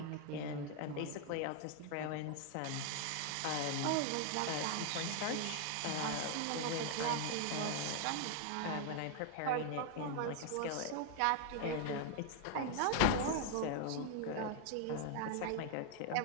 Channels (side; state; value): both; different; correlation 0.00